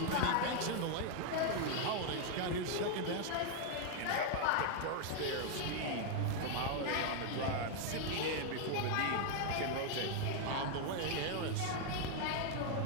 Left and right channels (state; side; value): different; both; correlation 0.00